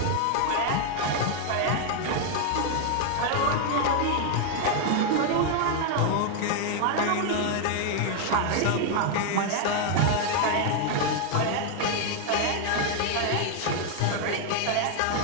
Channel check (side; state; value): both; different; correlation 0.00